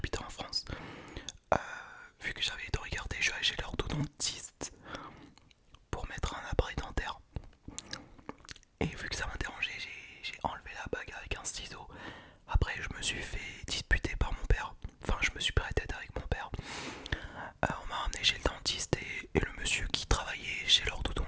en France. Euh, Vu que j'avais été regarder, je suis allé chez l'orthodontiste pour mettre un appareil dentaire. Et vu que ça m'a dérangé, j'ai enlevé la bague avec un ciseau. Après, je me suis fait disputer par mon père. Enfin, je me suis pris la tête avec mon père. On m'a ramené chez le dentiste et le monsieur qui travaillait chez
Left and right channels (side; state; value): both; identical; correlation 1.00